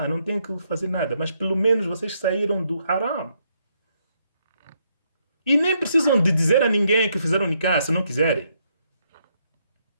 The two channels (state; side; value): inverted; both; correlation -0.75